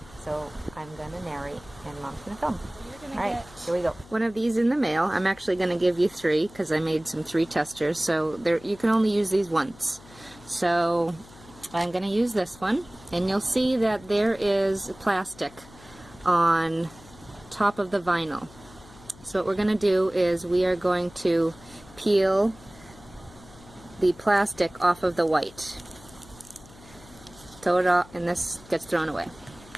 So I'm going to narrate and Mom's going to film. Alright, here we go. One of these in the mail. I'm actually going to give you 3 because I made some 3 testers, so you can only use these once. So I'm going to use this one, and you'll see that there is plastic on top of the vinyl. So what we're going to do is we are going to peel the plastic off of the white. Throw it off, and this gets thrown away.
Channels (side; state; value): left; noise; hum, 22 dB below the sound